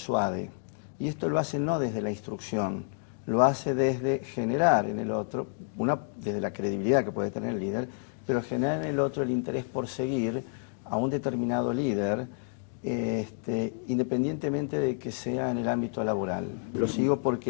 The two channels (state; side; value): silent; right; digital silence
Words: Y esto lo hace no desde la instrucción, lo hace desde generar en el otro, desde la credibilidad que puede tener el líder, pero generar en el otro el interés por seguir a un determinado líder, independientemente de que sea en el ámbito laboral. Lo sigo